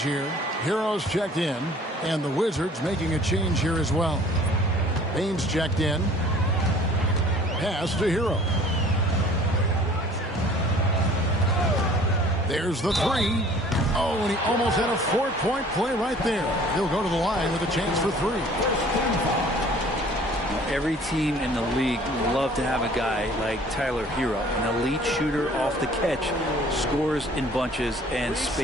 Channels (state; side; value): normal; both; correlation 0.51